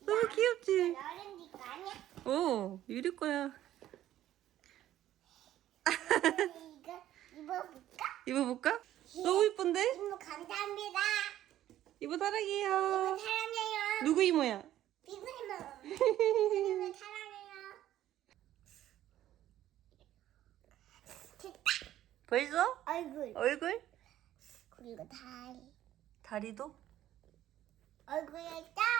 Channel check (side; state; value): left; quieter; 12.8 dB